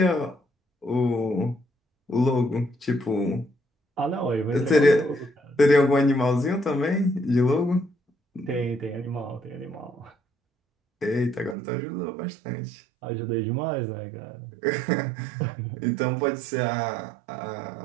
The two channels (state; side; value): drops out; left; at 11.6 s